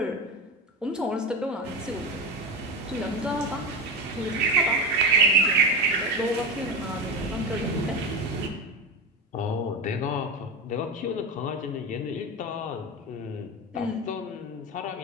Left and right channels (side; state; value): both; normal; correlation 0.19